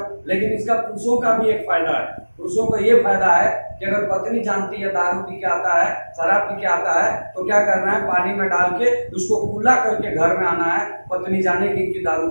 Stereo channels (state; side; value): inverted; both; correlation -1.00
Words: लेकिन इसका पुरुषों का भी एक फायदा है। पुरुषों का ये फायदा है कि अगर पत्नी जानती है दारू पी के आता है, शराब पी के आता है, तो क्या करना है, पानी में डाल के उसको कूला करके घर में आना है। पत्नी जाने की दारू